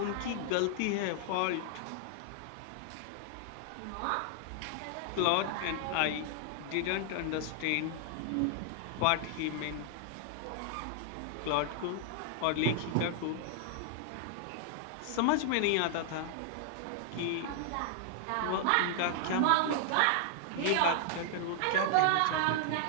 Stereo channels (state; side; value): different; both; correlation 0.00